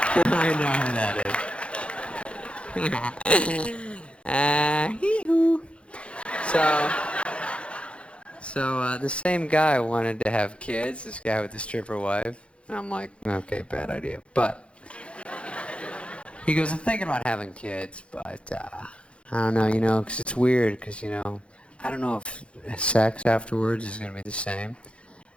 I know who that is. Hee-hoo. So the same guy wanted to have kids, this guy with the stripper wife. And I'm like, okay, bad idea. But he goes, I'm thinking about having kids, but I don't know, because it's weird, because, I don't know if sex afterwards is going to be the same.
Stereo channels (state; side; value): late; right; 0.059 ms